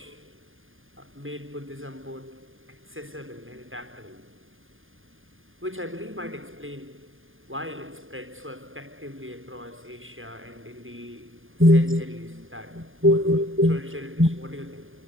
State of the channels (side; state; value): left; late; 0.59 ms